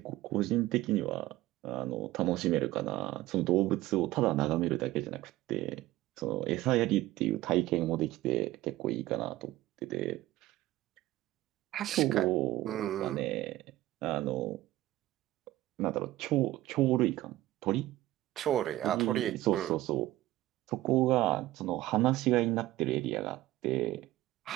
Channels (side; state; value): left; quieter; 16.3 dB